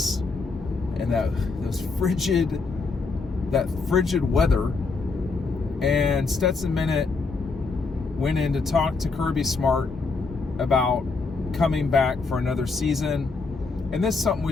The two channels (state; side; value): quieter; right; 4.1 dB